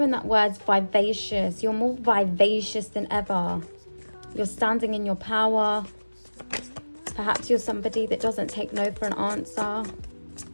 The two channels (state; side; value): inverted; both; correlation -1.00